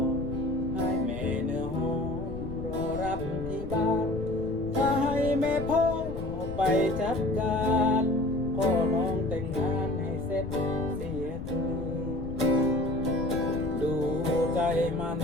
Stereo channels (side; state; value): left; noise; rumble, 9 dB below the sound